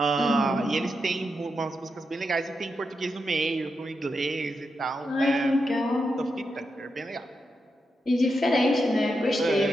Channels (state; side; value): normal; both; correlation 0.86